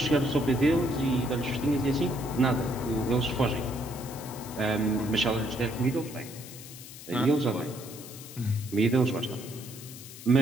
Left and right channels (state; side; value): noise; left; hiss, 15 dB below the sound